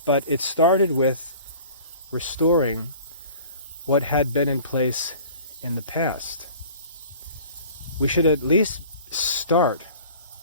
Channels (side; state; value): both; inverted; correlation -0.45